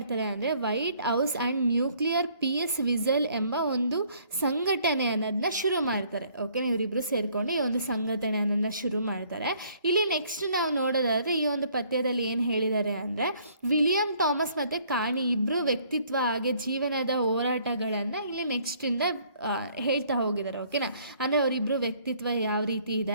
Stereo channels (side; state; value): both; inverted; correlation -0.62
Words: ಅಂದರೆ White House and nuclear peace whistle ಎಂಬ ಒಂದು ಸಂಘಟನೆ ಅನ್ನೋದನ್ನ ಶುರು ಮಾಡ್ತಾರೆ. ಓಕೆನಾ? ಇವರಿಬ್ಬರು ಸೇರಿಕೊಂಡು ಈ ಒಂದು ಸಂಘಟನೆ ಅನ್ನೋದನ್ನ ಶುರು ಮಾಡ್ತಾರೆ. ಇಲ್ಲಿ ನೆಕ್ಸ್ಟ್ ನಾವು ನೋಡೋದಾದರೆ ಈ ಒಂದು ಪದ್ಯದಲ್ಲಿ ಏನು ಹೇಳಿದ್ದಾರೆ ಅಂದರೆ ವಿಲಿಯಂ ಥಾಮಸ್ ಮತ್ತು ಕಾಣಿ ಇಬ್ಬರು ವ್ಯಕ್ತಿತ್ವ ಹಾಗೆ ಜೀವನದ ಹೋರಾಟಗಳನ್ನು ಇಲ್ಲಿ ನೆಕ್ಸ್ಟಿಂದ ಹೇಳ್ತಾ ಹೋಗಿದ್ದಾರೆ. ಓಕೆನಾ? ಅಂದರೆ ಅವರಿಬ್ಬರು ವ್ಯಕ್ತಿತ್ವ ಯಾವ ರೀತಿ